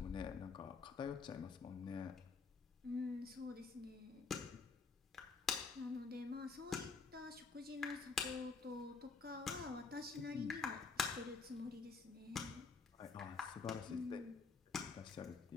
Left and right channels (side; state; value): right; quieter; 4.8 dB